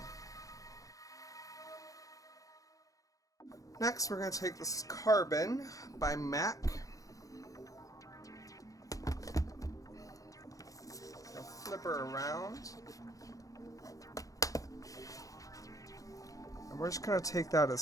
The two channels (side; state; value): right; late; 0.17 ms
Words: Next, we're going to take this Carbon by MAC. I'll flip her around. And we're just going to take that